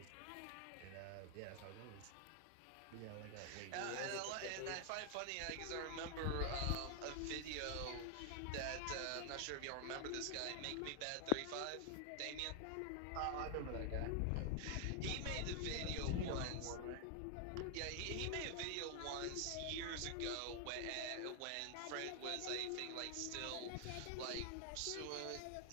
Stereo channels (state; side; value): different; both; correlation 0.00